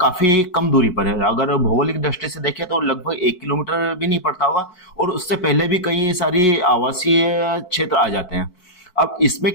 काफी कम दूरी पर है। अगर भौगोलिक दृष्टि से देखें तो लगभग 1 किलोमीटर भी नहीं पड़ता होगा, और उससे पहले भी कई सारी आवासीय क्षेत्र आ जाते हैं। अब इसमें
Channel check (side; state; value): right; late; 4.5 ms